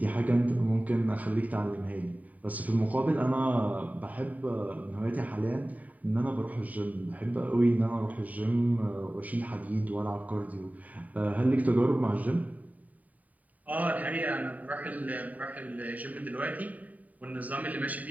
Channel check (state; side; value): late; left; 0.073 ms